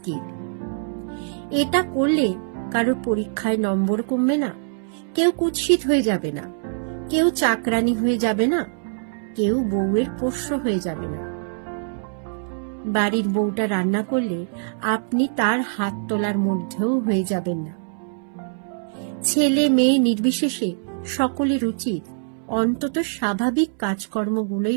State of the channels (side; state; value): left; silent; 63 dB below the other